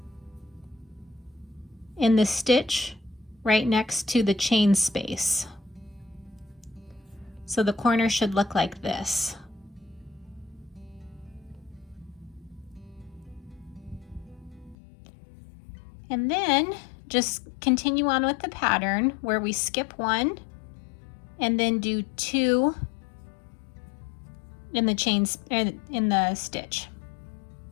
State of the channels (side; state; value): right; drops out; at 14.8 s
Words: in the stitch right next to the chain space. So the corner should look like this. And then just continue on with the pattern where we skip 1 and then do 2 in the stitch.